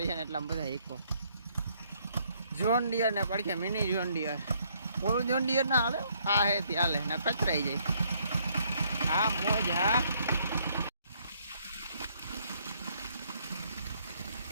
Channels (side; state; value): both; inverted; correlation -0.68